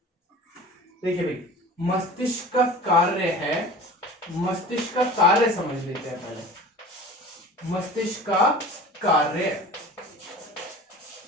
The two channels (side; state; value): both; normal; correlation 0.39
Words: देखिए भाई, मस्तिष्क का कार्य है, मस्तिष्क का कार्य समझ लेते हैं पहले। मस्तिष्क का कार्य